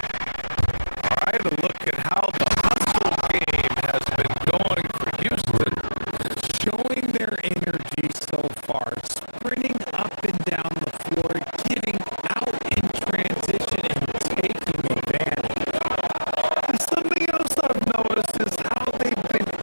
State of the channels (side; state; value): both; inverted; correlation -1.00